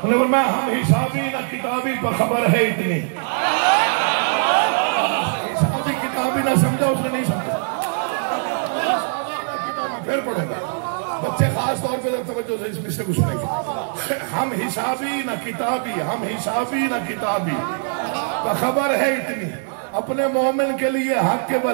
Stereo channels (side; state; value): left; silent; 65 dB below the other